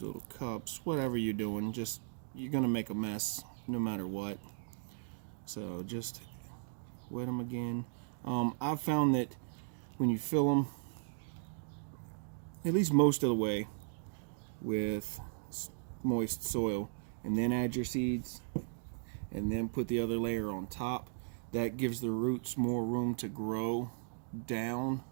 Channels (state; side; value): silent; left; digital silence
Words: little cups, whatever you're doing. Just, you're gonna make a mess no matter what. So just wet them again. I've found that when you fill them, at least most of the way, with moist soil, and then add your seeds, and then put the other layer on top, that gives the roots more room to grow down